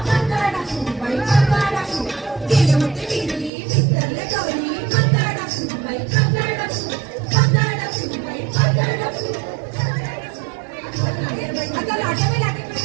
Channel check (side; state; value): left; drops out; at 3.5 s